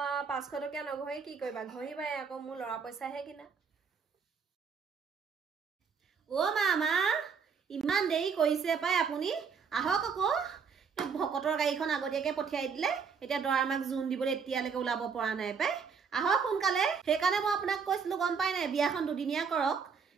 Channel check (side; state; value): left; quieter; 6.0 dB